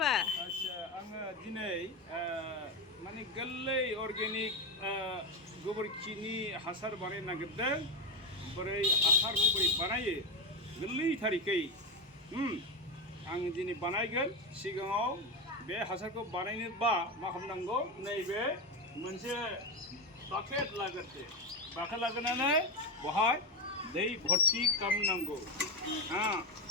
आच्छा आङो दिनै माने गोरलै अर्गेनिक गोबोरखिनि हासार बानायनो नागिरदों। बोरै हासारखौ बोरै बानायो गोरलै थारिखै आं दिनै बानायगोन। सिगाङाव बे हासारखौ बानायनोबा मा खालामनांगौ, नैबे मोनसे बाकेट लाग्रोदो। बाकेट लाग्रोनानै बहाय दै भर्ती खालामनांगौ।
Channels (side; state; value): both; normal; correlation 0.13